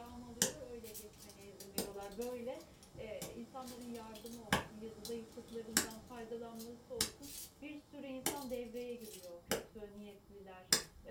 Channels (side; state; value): both; identical; correlation 1.00